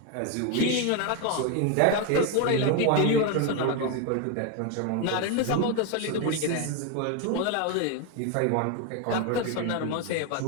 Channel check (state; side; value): different; both; correlation 0.02